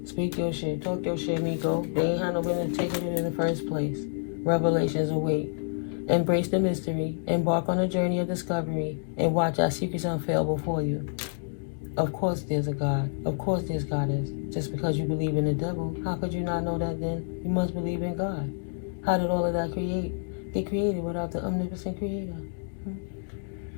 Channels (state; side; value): silent; right; digital silence